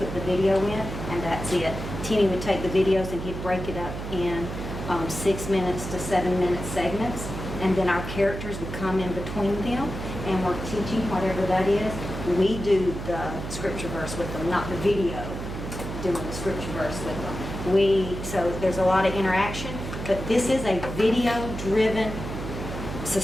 the video in, and that's it. Timmy would take the videos and he'd break it up in 6 minutes to 7 minute segments. And then our characters would come in between them and we're teaching whatever that is. We do the scripture verse with them, not the video doing the scripture verse with them. So there's a lot of interaction, but this is a video-driven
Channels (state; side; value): noise; right; hum, 7 dB below the sound